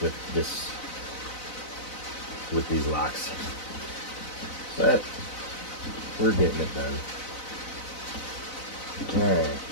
with these locks, but we're getting it done. All right,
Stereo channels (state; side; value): late; right; 4.0 ms